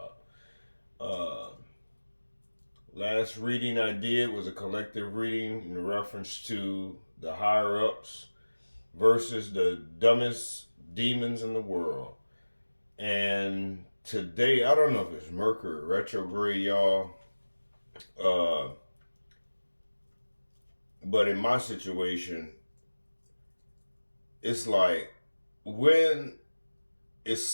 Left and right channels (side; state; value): both; inverted; correlation -1.00